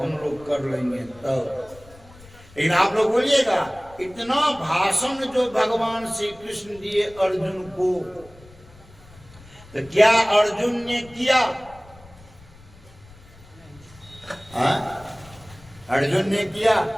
लोग कर लेंगे तब। लेकिन आप लोग बोलिएगा, इतना भाषण जो भगवान श्री कृष्ण दिए अर्जुन को, तो क्या अर्जुन ने किया? अर्जुन ने किया?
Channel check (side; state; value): left; noise; rumble, 23 dB below the sound